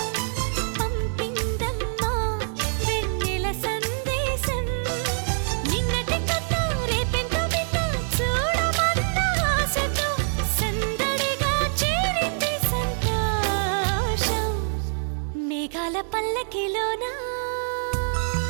పంపిందమ్మా వెన్నెల సందేశం నిన్నటి కథ రేపెంతో వింత చూడమన్న ఆశతో సందడిగా చేరింది సంతోషం మేఘాల పల్లకిలోనా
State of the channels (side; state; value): left; silent; digital silence